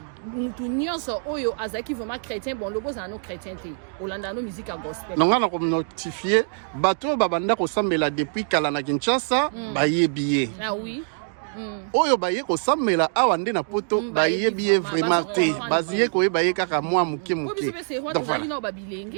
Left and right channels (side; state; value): left; silent; digital silence